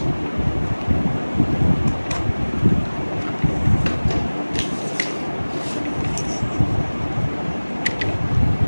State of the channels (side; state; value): both; inverted; correlation -1.00